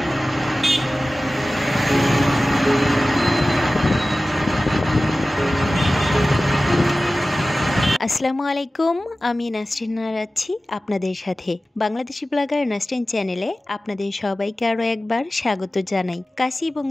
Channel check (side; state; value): both; normal; correlation 0.96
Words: আসসালামু আলাইকুম, আমি নাসরিন আছি আপনাদের সাথে। বাংলাদেশি ব্লগার নাসরিন চ্যানেলে আপনাদের সবাইকে আরও একবার স্বাগত জানাই। কাছে এবং